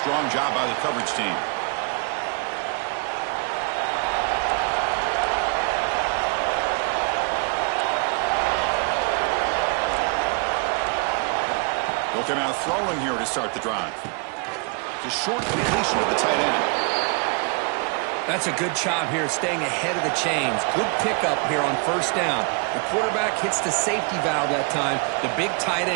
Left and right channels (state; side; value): quieter; left; 34.8 dB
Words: job by the coverage team. They'll come out throwing here to start the drive. It's a short completion of the tight end. That's a good job here, staying ahead of the chains. Good pickup here on 1st down. The quarterback hits the safety valve that time. The big tight